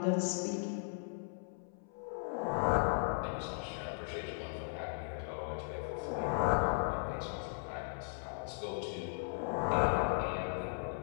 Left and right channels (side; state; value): right; silent; 53 dB below the other